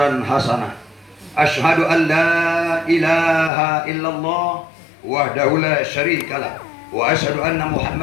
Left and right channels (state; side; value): drops out; right; at 3.5 s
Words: hasanah. Ashhadu an la ilaha illallah wahdahu la syarika lah wa ashhadu anna